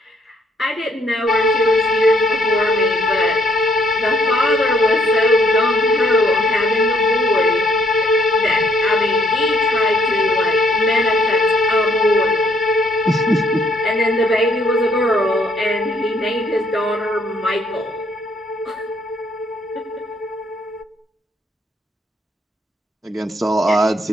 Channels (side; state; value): both; normal; correlation 0.68